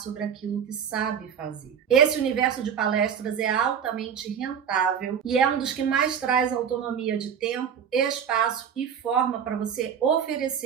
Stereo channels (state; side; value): quieter; left; 7.9 dB